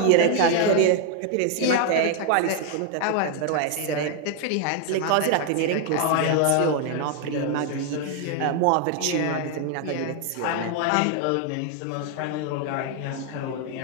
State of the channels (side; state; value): both; different; correlation 0.00